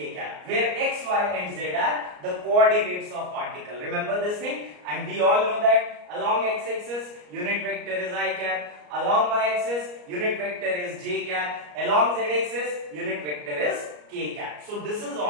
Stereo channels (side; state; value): left; late; 34 ms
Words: cap, where x, y and z are the coordinates of particle. Remember this thing, and we all know that along x-axis unit vector is I cap, along y-axis unit vector is j cap, along z-axis unit vector is k cap. So this is